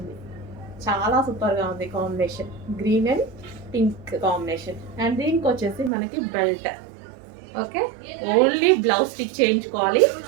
చాలా సూపర్గా ఉంది combination, green and pink combination. And దీనికి వచ్చేసి మనకి belt. Okay, only blouse stitch చేయించుకోవాలి,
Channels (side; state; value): left; drops out; at 5.9 s